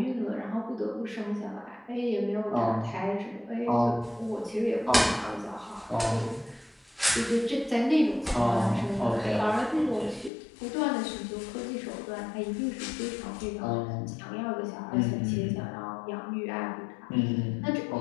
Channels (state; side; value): drops out; right; at 10.3 s